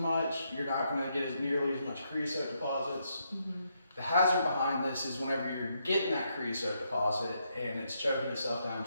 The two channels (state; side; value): inverted; both; correlation -0.78